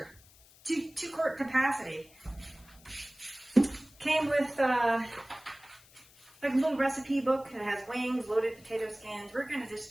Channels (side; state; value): left; noise; hiss, 25 dB below the sound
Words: 2 quart capacity. Came with like a little recipe book. It has wings, loaded potato skins. We're going to just